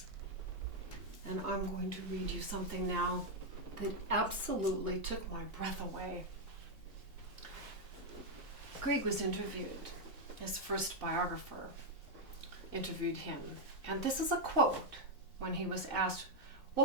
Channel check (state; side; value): normal; both; correlation 0.00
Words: And I'm going to read you something now that absolutely took my breath away. Grieg was interviewed. His first biographer interviewed him. And this is a quote when he was asked,